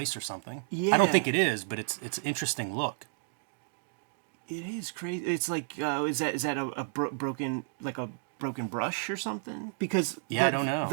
or something. Yeah. I don't think it is, but it's an interesting look. It is crazy. It's like, is that a broken brush or something? Because I don't know.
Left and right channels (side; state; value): left; silent; digital silence